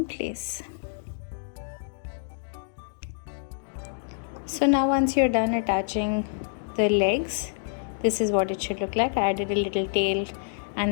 place. So now once you're done attaching the legs, this is what it should look like. I added a little tail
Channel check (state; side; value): silent; right; digital silence